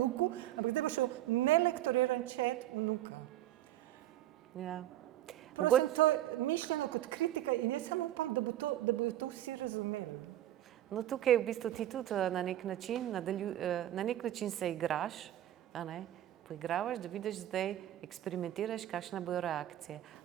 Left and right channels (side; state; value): left; quieter; 13.3 dB